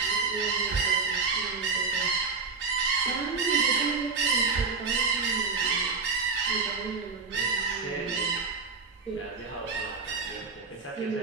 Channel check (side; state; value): left; quieter; 4.6 dB